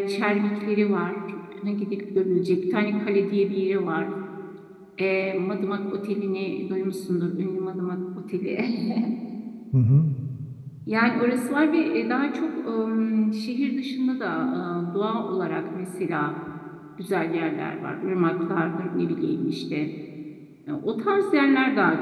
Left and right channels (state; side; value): identical; both; correlation 1.00